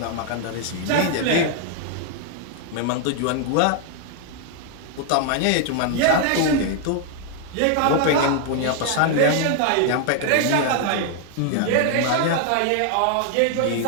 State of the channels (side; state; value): both; different; correlation 0.00